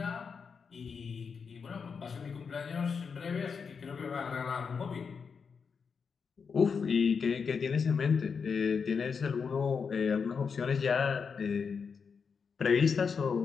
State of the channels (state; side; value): quieter; right; 5.8 dB